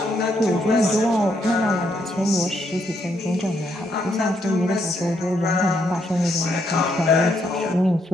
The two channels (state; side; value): normal; both; correlation 0.75